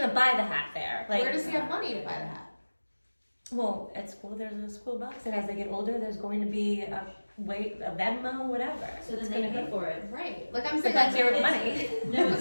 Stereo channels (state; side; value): inverted; both; correlation -1.00